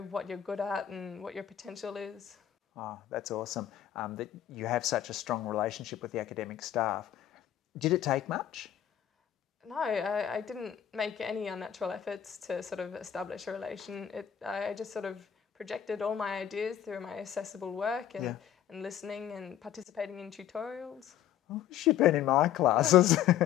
what you're good at and what your potential is. Oh, that's awesome. That you have such a strong relationship with the academic staff. Did it take much? No, I didn't make any unnatural efforts to sort of establish a relation. I just sort of projected all my ideas through my accessible work and listening and participating in tutorials. Oh, she'd been in my classes.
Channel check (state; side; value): quieter; right; 10.6 dB